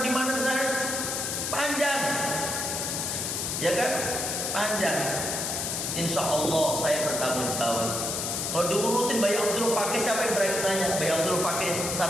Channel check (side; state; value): left; noise; hiss, 2 dB below the sound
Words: di mana saya panjang, ya kan? Panjang. Insya Allah saya bertanggung jawab. Kalau diurutin Bayi Abdul Fakih, siapa yang berani nanya? Bayi Abdul Fakih